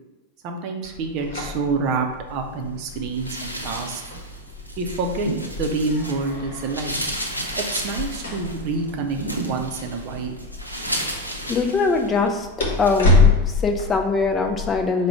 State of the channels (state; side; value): normal; both; correlation 0.19